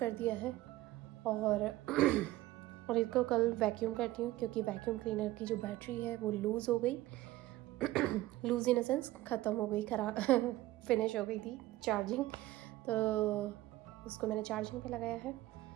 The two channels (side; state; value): left; quieter; 16.8 dB